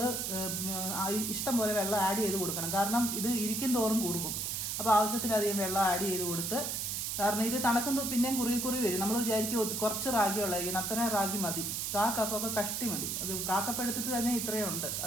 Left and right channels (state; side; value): noise; right; hiss, 2 dB below the sound